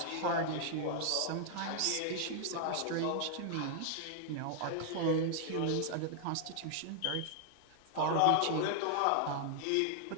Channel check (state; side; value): different; both; correlation 0.00